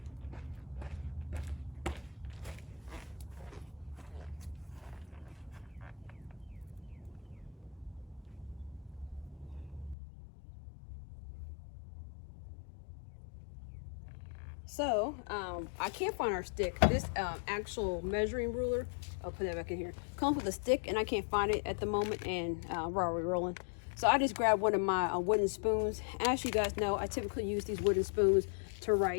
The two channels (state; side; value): drops out; right; at 10.0 s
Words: So, I can't find our stick. This actual measuring ruler, I'll put that back in here, comes with a stick, and I can't find it at the moment, and we're already rolling. So I just grabbed one of my wooden spoons. As you guys know, I typically use these wooden spoons to